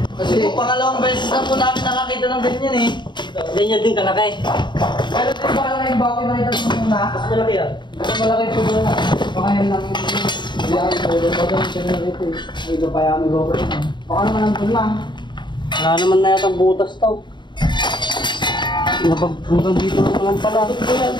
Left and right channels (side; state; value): right; late; 0.22 ms